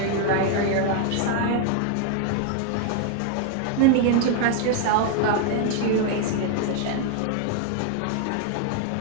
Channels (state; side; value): different; both; correlation 0.00